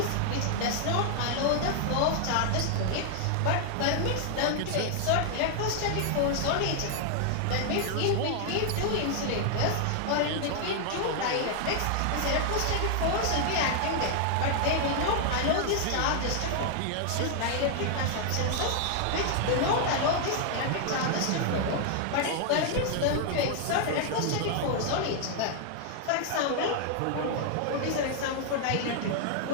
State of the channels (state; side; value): different; both; correlation 0.00